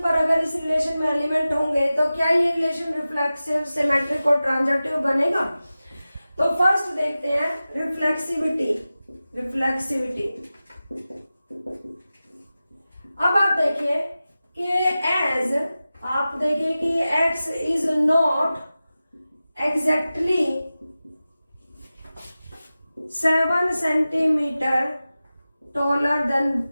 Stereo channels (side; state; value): both; inverted; correlation -0.95